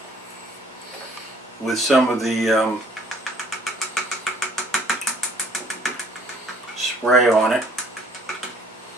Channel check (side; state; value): both; normal; correlation 0.58